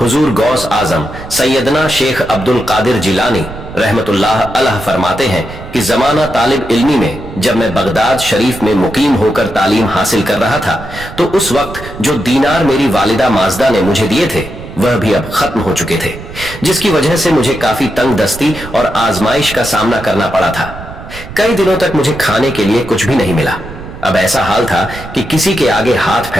हुजूर गौस आजम सैयदना शेख अब्दुल कादिर जिलानी रहमतुल्लाह अलैह फरमाते हैं कि जमाना तालिब इल्मी में जब मैं बगदाद शरीफ में मुकीम होकर तालीम हासिल कर रहा था तो उस वक्त जो दीनार मेरी वालिदा माजदा ने मुझे दिए थे वह भी अब खत्म हो चुके थे, जिसकी वजह से मुझे काफी तंग दस्ती और आजमाइश का सामना करना पड़ा था। कई दिनों तक मुझे खाने के लिए कुछ भी नहीं मिला। अब ऐसा हाल था कि किसी के आगे हाथ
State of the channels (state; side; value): noise; right; rumble, 13 dB below the sound